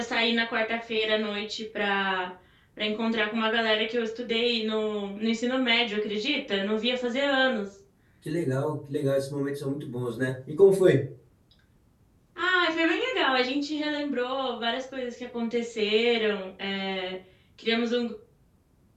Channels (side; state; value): both; identical; correlation 1.00